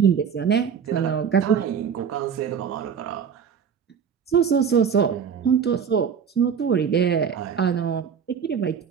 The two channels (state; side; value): quieter; left; 7.1 dB